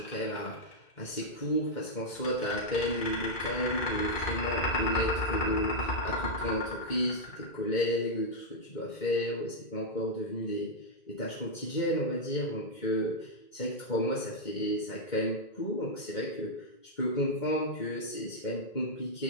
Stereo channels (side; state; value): right; late; 2.1 ms